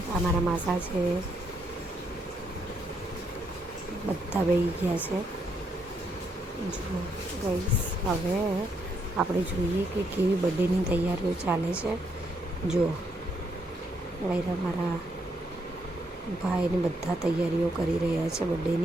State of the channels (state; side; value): normal; both; correlation 0.75